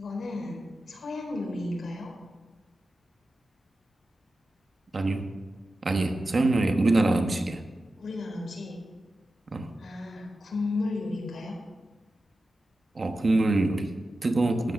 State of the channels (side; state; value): both; normal; correlation 0.92